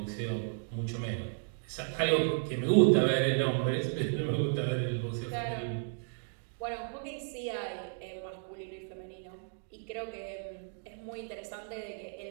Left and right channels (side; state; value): left; silent; digital silence